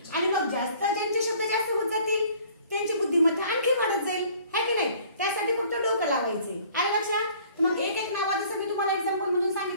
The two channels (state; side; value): inverted; both; correlation -0.54